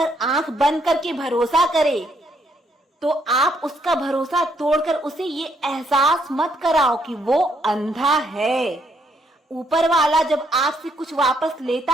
आंख बंद करके भरोसा करे तो आप उसका भरोसा तोड़कर उसे ये एहसास मत कराओ कि वो अंधा है। ऊपर वाला जब आपसे कुछ वापस लेता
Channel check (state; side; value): normal; both; correlation 0.72